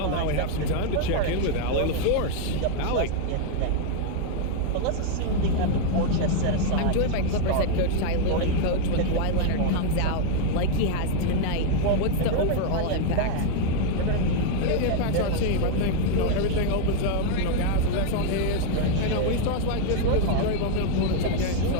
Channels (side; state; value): both; different; correlation 0.00